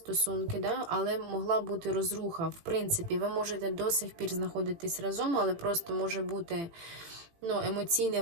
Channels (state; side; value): late; left; 18 ms